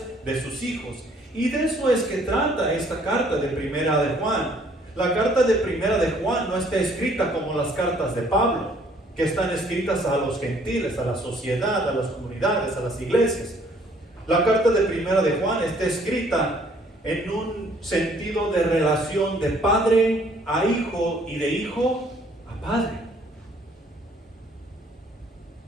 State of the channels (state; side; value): normal; both; correlation 0.61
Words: de sus hijos. Y de eso es que trata esta carta de Primera de Juan. La carta de Primera de Juan no está escrita como las cartas de Pablo, que están escritas a los gentiles, a la sociedad, a las comunidades, a las iglesias. La carta de Primera de Juan está escrita en un sentido de relación de padre a hijo y de hijo a padre.